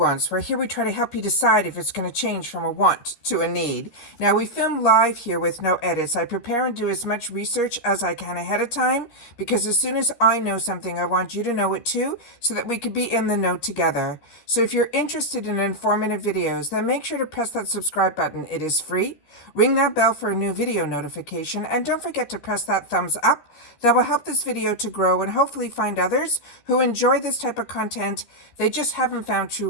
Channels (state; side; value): late; right; 13 ms